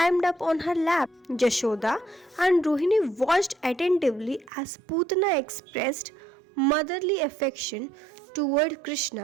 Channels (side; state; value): left; drops out; at 4.5 s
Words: up on her lap. Jashoda and Rohini watched attentively as Putana expressed motherly affection toward